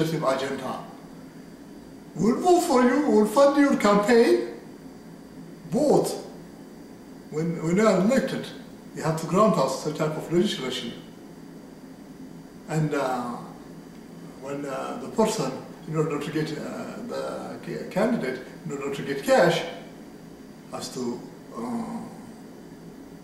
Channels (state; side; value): identical; both; correlation 1.00